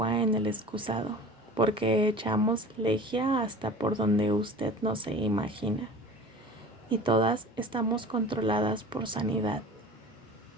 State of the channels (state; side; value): normal; both; correlation 0.40